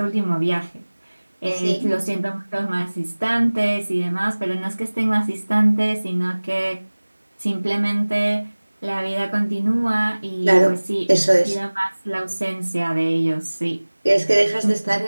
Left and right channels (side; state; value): both; inverted; correlation -1.00